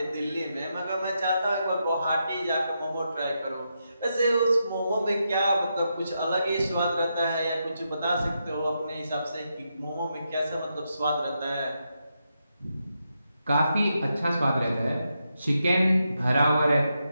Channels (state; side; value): inverted; both; correlation -0.84